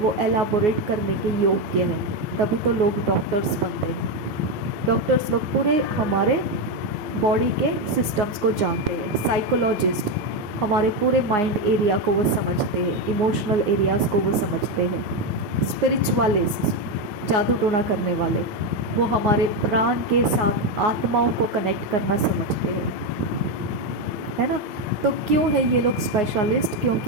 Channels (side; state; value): left; late; 9.5 ms